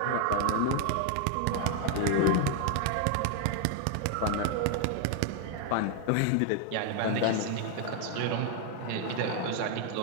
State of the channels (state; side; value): different; both; correlation 0.00